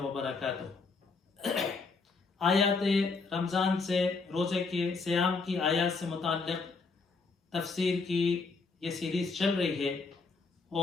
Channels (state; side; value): quieter; right; 4.3 dB